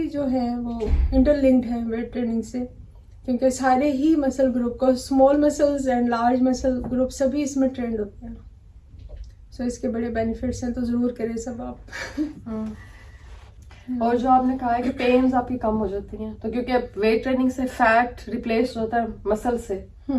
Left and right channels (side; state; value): both; identical; correlation 1.00